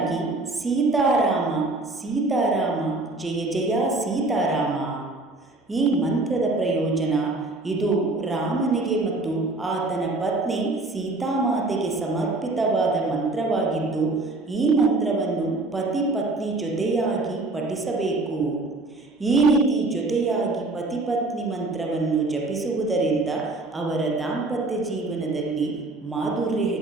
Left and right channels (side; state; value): left; quieter; 3.0 dB